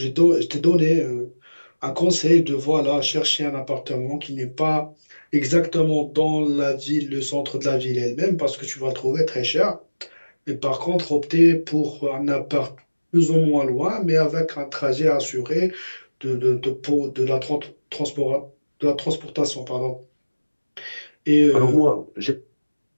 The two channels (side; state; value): both; inverted; correlation -1.00